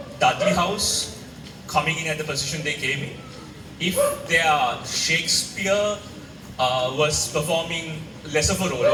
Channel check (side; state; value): both; identical; correlation 1.00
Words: Dudley House coming in at the position they came in, if their Shakespeare was performing less of a role